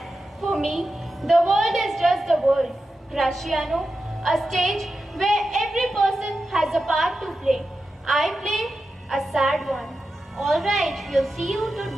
For me, the world is just the world. Graciano, a stage where every person has a part to play. I play a sad one. All right, we'll see you to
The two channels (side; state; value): both; normal; correlation 0.91